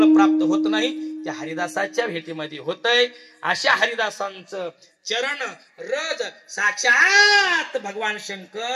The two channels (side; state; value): both; identical; correlation 1.00